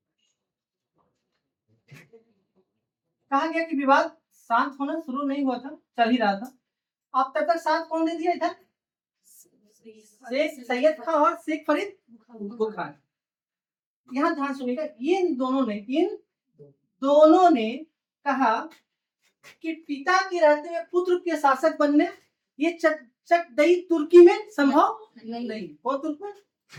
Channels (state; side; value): identical; both; correlation 1.00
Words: कहा गया कि विवाद शांत होना शुरू नहीं हुआ था, चल ही रहा था। अब तब तक साथ कौन दे दिया इधर? शेख सैयद खान और शेख फरीद बुखार। यहाँ ध्यान सुनिएगा, इन दोनों ने कहा कि पिता के रहते हुए पुत्र के शासक बनने ये चकदई तुर्की में संभव नहीं। कौन तुर्क में?